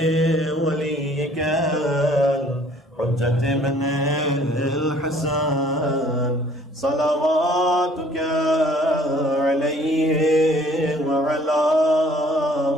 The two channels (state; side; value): normal; both; correlation 0.57